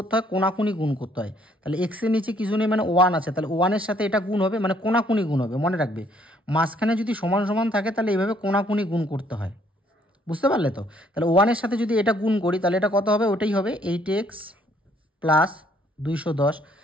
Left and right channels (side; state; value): both; normal; correlation 0.65